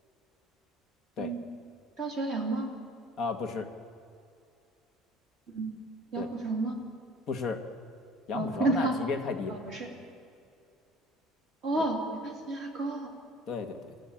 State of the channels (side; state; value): both; normal; correlation 0.48